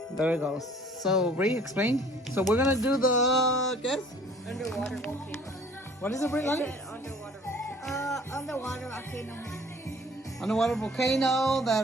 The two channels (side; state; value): both; normal; correlation 0.52